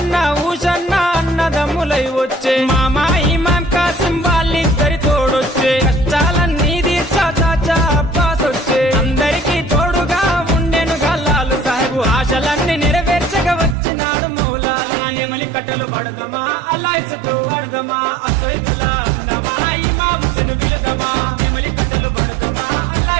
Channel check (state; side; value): drops out; left; at 13.8 s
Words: ఊషన్న అన్నదమ్ములై వచ్చే మామా ఇమాం కాసిం వాళ్ళిద్దరి తోడొచ్చే కష్టాలన్నీ తీర్చా చాచా అబ్బాస్ వచ్చే అందరికీ తోడుగా ఉండెను గల్లాలు సాహెబు ఆశలన్నీ నెరవేర్చగా వచ్చినాడు మౌలాలి ఎమలి కట్టెలు పడదమా అల్లాయిసకు పడదమా సైతుల్లా అన్నమా ఇమాం హుసేన్ బిలదమా ఎమలి కట్టెలు పడదమా